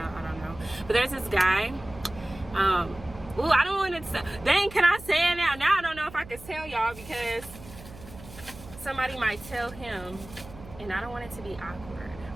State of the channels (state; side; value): noise; right; hum, 17 dB below the sound